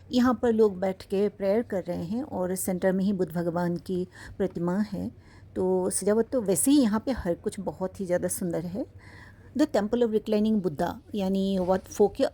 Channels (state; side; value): identical; both; correlation 1.00